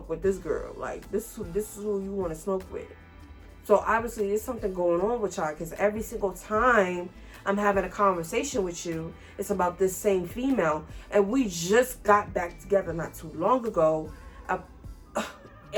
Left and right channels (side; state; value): both; identical; correlation 1.00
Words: with this girl. Like, this is who you want to smoke with. So, obviously, there's something going on with y'all. Because every single time I'm having a conversation with you, it's about this same female. And we just got back together not too long ago.